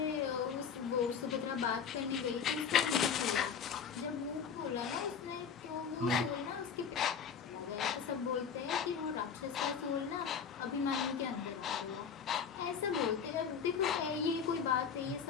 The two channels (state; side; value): quieter; right; 6.8 dB